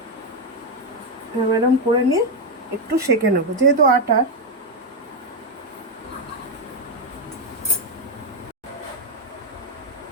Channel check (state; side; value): normal; both; correlation 0.04